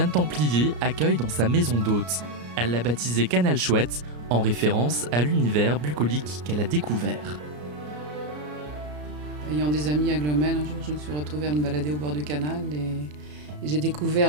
Templier accueille dans sa maison d'hôte. Elle l'a baptisé Canal Chouette, en référence à l'univers bucolique qu'elle a découvert. Ayant des amis à Glomel, un jour je me suis retrouvée à me balader au bord du canal et j'ai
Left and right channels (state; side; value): late; left; 33 ms